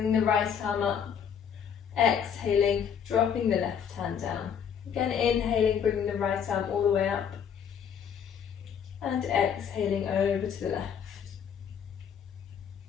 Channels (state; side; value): quieter; right; 7.8 dB